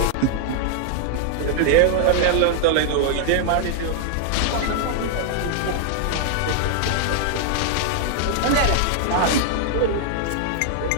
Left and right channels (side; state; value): both; different; correlation 0.00